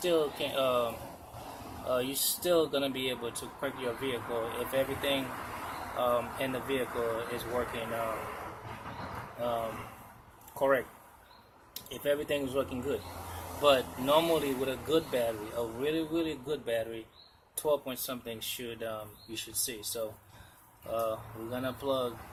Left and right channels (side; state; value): both; identical; correlation 1.00